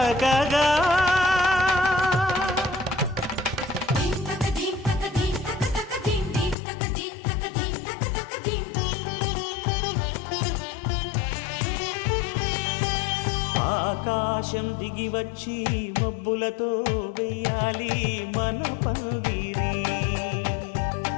ఆకాశం దిగి వచ్చి మబ్బులతో వెయ్యాలి మన పందిరి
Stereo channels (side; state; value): right; drops out; at 6.6 s